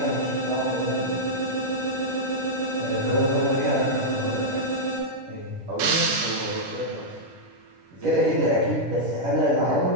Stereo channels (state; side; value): late; left; 10 ms